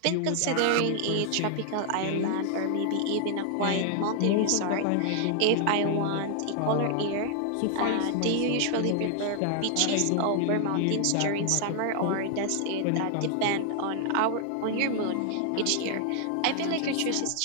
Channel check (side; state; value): both; different; correlation 0.00